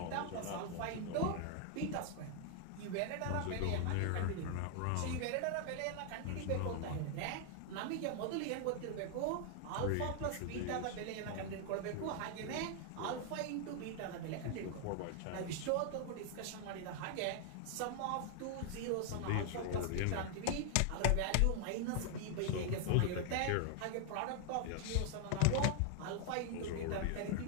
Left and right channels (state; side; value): different; both; correlation 0.00